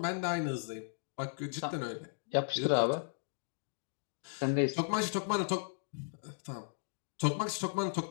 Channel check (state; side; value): silent; right; digital silence